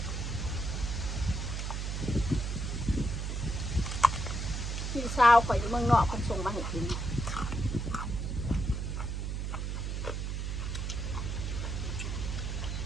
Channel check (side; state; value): right; noise; hum, 2 dB below the sound